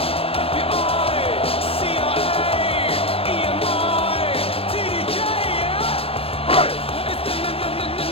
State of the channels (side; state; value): right; late; 0.28 ms